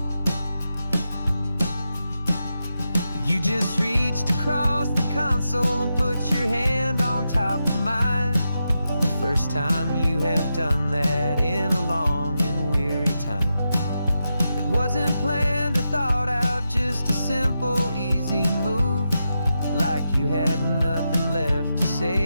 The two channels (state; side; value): inverted; both; correlation -0.88